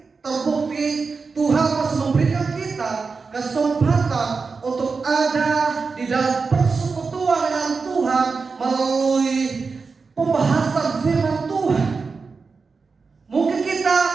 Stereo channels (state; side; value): quieter; left; 4.7 dB